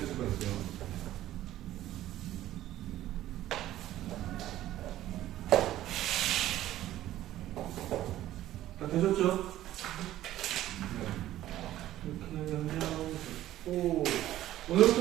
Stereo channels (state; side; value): quieter; left; 13.8 dB